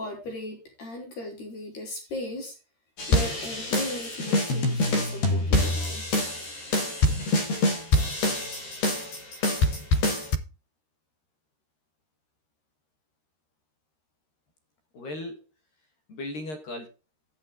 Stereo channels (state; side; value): late; right; 13 ms